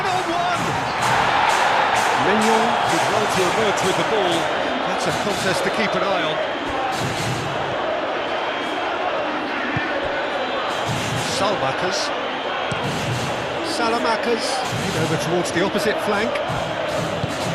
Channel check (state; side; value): identical; both; correlation 1.00